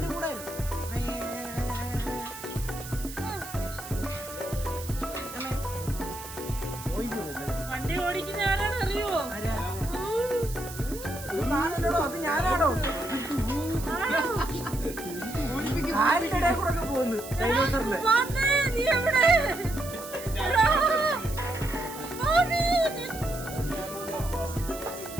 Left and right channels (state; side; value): noise; right; hiss, 13 dB below the sound